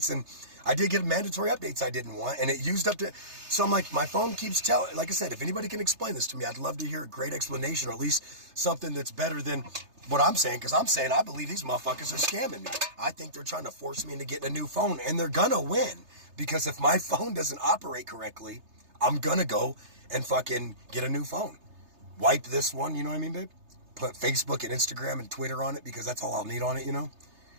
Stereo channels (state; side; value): late; left; 3.3 ms